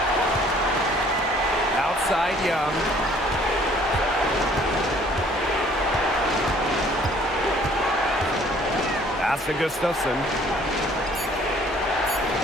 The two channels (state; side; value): normal; both; correlation 0.57